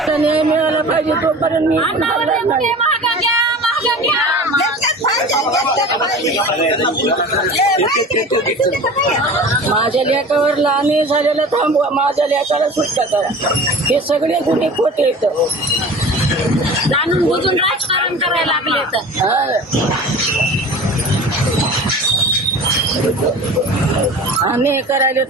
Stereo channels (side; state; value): both; normal; correlation 0.38